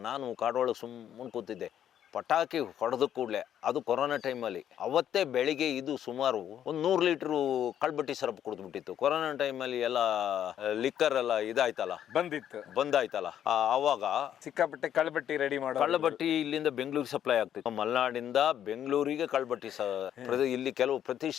ನಾನು ಕಾಡೊಳಗೆ ಸುಮ್ಮನೆ ಕೂತಿದ್ದೆ. ಪಟಾಕಿ ಹೊಡೆದ ಕೂಡಲೇ, ಅದು ಕೊರೋನಾ ಟೈಮಲ್ಲಿ, ಅವತ್ತೇ ಬೆಳಿಗ್ಗೆ ಇದು ಸುಮಾರು 100 ಲೀಟ್ರು ಕಳ್ಬಟ್ಟಿ ಸರಪ್ ಕುಡಿದ್ಬಿಟ್ಟಿತ್ತು. ಕೊರೋನಾ ಟೈಮಲ್ಲಿ ಎಲ್ಲ ಲಿಕ್ಕರ್ ಎಲ್ಲ ಇದಾಯ್ತಲ್ಲ, ಬಂದಾಯ್ತಲ್ಲ, ಆವಾಗ ಸಿಕ್ಕಾಪಟ್ಟೆ ಕಳ್ಬಟ್ಟಿ ರೆಡಿ ಮಾಡೋ ಕಳ್ಳಬಟ್ಟಿ ಇಲ್ಲಿಂದ ಬೆಂಗಳೂರಿಗೆ ಸಪ್ಲೈ ಆಗ್ತಿತ್ತು. ಮಲೆನಾಡಿಂದ ಬೆಂಗಳೂರಿಗೆ ಕಳ್ಬಟ್ಟಿ ಇಲ್ಲಿ ಕೆಲವು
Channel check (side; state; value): right; quieter; 10.1 dB